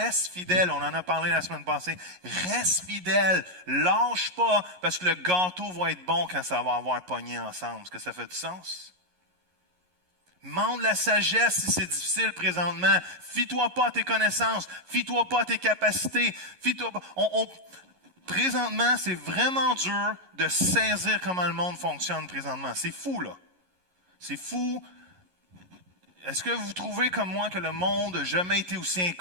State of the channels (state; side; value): late; left; 11 ms